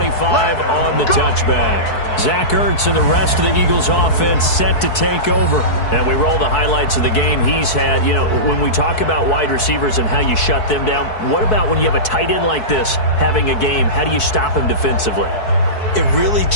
on the touchback. Zach Ertz and the rest of the Eagles offense set to take over. And we roll the highlights of the game he's had. You know, when we talk about wide receivers and how you shut them down, what about when you have a tight end like this having a game? How do you stop him defensively? It really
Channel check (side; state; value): right; late; 4.6 ms